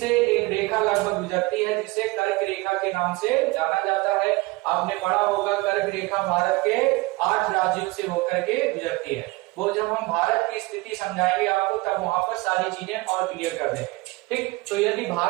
एक रेखा लगभग गुजरती है जिसे कर्क रेखा के नाम से जाना जाता है। आपने पढ़ा होगा कर्क रेखा भारत के 8 राज्यों से होकर के गुजरती है। वो जब हम भारत की स्थिति समझाएंगे आपको तब वहां पर सारी चीजें और क्लियर कर देंगे। ठीक, तो यदि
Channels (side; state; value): left; quieter; 22.8 dB